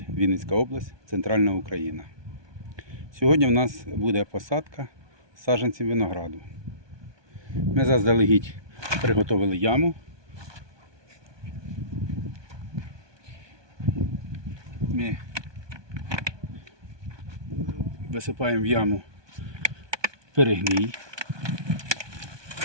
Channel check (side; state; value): left; late; 1.2 ms